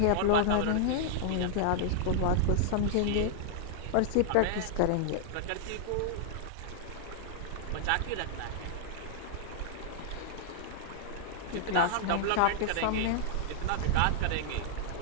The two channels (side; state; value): both; different; correlation -0.01